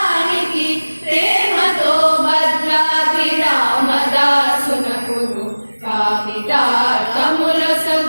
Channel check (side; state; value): both; inverted; correlation -1.00